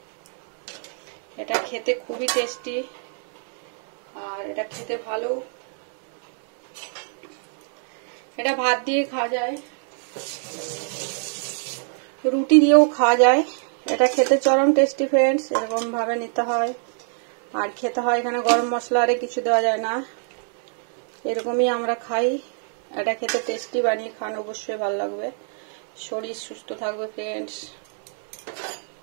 এটা খেতে খুবই টেস্টি, আর এটা খেতে ভালো। এটা ভাত দিয়ে খাওয়া যায়, রুটি দিয়েও খাওয়া যায়। এটা খেতে চরম টেস্টি ফ্রেন্ডস, এরকম ভাবে নিতে হয়। আর খেতে হয়, এখানে গরম মশলা আরে কিছু দেওয়া যায় না, এরকমই আমরা খাই। এটা খেতে টেস্টি, বানিয়ে খান, অবশ্যই ভালো লাগবে, শরীর সুস্থ থাকবে ফ্রেন্ডস।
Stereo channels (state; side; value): silent; left; 57 dB below the other